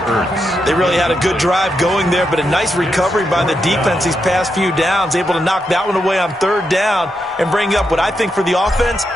They really had a good drive going there, but a nice recovery by the defense these past few downs, able to knock that one away on 3rd down and bring up what I think for the offense,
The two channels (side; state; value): both; normal; correlation 0.84